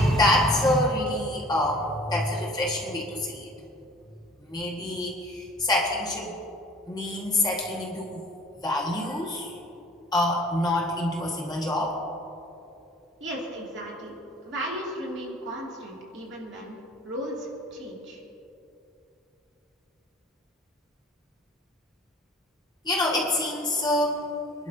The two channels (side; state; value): both; normal; correlation 0.49